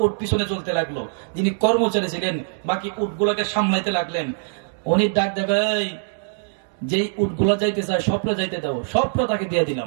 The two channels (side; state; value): left; silent; 64 dB below the other